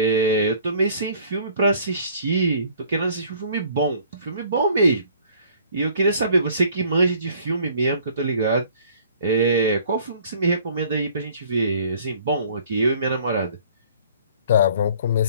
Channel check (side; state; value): both; inverted; correlation -0.55